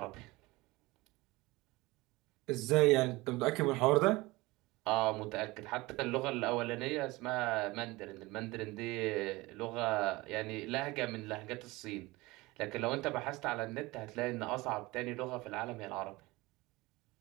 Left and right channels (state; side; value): quieter; left; 21.4 dB